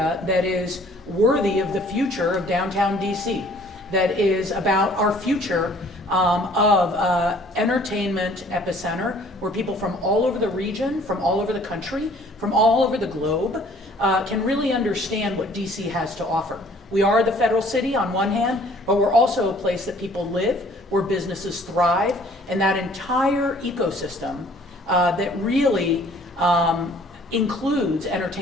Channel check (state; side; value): normal; both; correlation 0.56